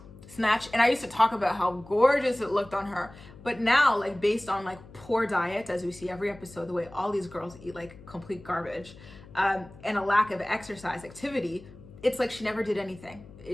snatch. And I used to talk about how gorgeous it looked on her. But now, like, based on like poor diet, as we see every episode, the way all these girls eat like complete garbage, and a lack of exercise activity, it's like she never did anything.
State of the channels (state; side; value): noise; left; hum, 19 dB below the sound